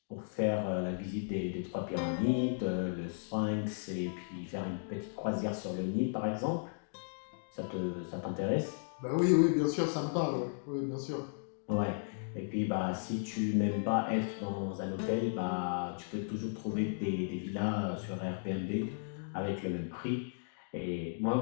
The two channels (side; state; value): right; silent; digital silence